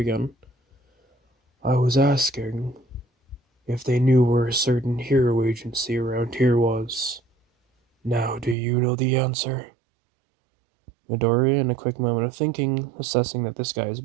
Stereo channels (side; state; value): left; drops out; at 8.6 s